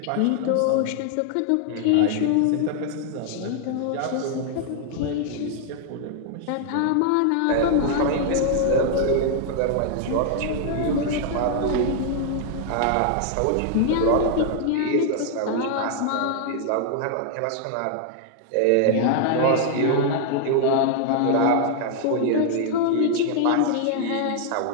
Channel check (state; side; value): different; both; correlation 0.00